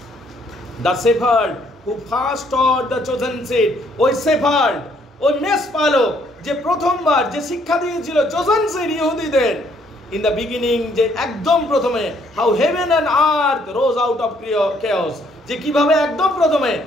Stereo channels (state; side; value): normal; both; correlation 0.67